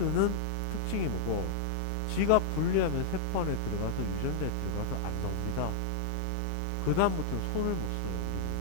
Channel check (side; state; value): both; normal; correlation -0.01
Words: 특징이 뭐고 지가 분리하면 세포 안에 들어가서 유전자에 들어가서 안 나옵니다. 그 다음부터는 손을 못 써요 우리 몸이.